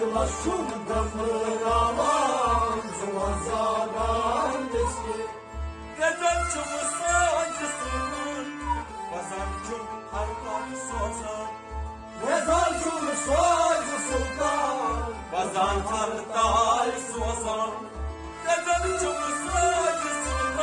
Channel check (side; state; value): both; identical; correlation 1.00